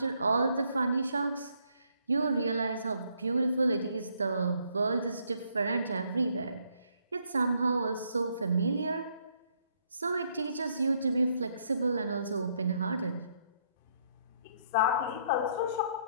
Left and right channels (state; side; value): inverted; both; correlation -0.71